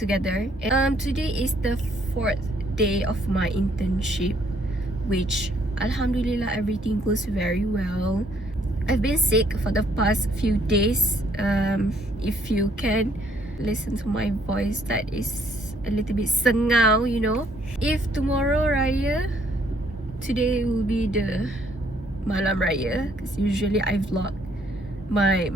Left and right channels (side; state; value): both; normal; correlation 0.65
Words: Today is the 4th day of my internship, which alhamdulillah everything goes very well. I've been sick for the past few days. If you can listen to my voice, that is a little bit sengau, you know. If tomorrow Raya, today will be the Malam Raya, because usually I vlog my